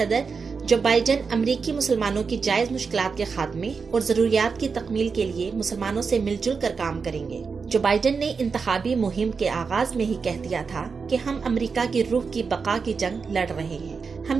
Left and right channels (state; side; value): quieter; left; 5.2 dB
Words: जो बाइडेन अमेरिकी मुसलमानों की जायज मुश्किलात के खात्मे और जरूरियात की तकमील के लिए मुसलमानों से मिलजुल कर काम करेंगे। जो बाइडेन ने इंतखाबी मुहिम के आगाज में ही कह दिया था कि हम अमेरिका की रूह की बका की जंग लड़ रहे हैं।